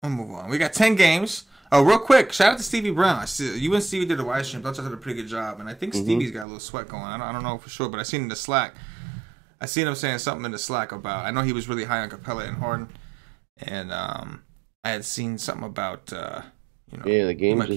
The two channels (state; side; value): drops out; left; at 6.5 s